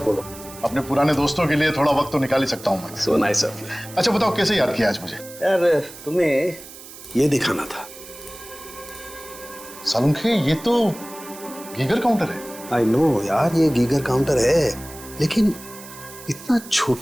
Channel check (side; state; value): right; noise; hiss, 16 dB below the sound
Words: बोलो, अपने पुराने दोस्तों के लिए थोड़ा वक्त तो निकाल ही सकता हूँ मैं। So nice of you. अच्छा बताओ कैसे याद किया आज मुझे? यार तुम्हें ये दिखाना था। सालुंखे ये तो गीगर काउंटर है। आई नो यार, ये गीगर काउंटर है, लेकिन इतना